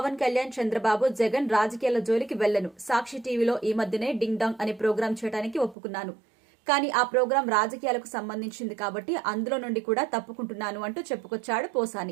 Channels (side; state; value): left; drops out; at 5.8 s